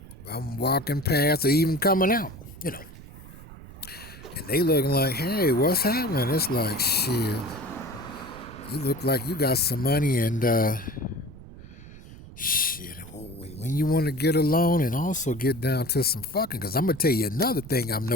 I'm walking past or even coming out, And they looking like, hey, what's happening? It's like, shit, you look like you got some money and, shit, when you want to get alone and also get down to some fucking, because I'm going to tell you another thing I'm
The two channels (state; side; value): noise; right; rumble, 17 dB below the sound